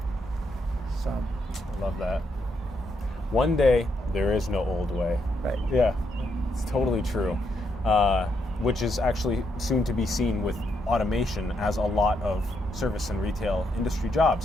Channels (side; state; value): both; normal; correlation 0.78